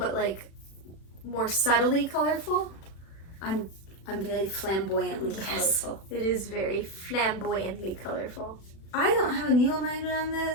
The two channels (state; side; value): late; right; 36 ms